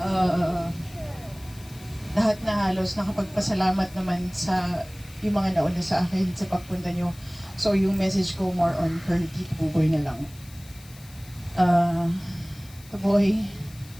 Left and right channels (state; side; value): noise; left; hiss, 22 dB below the sound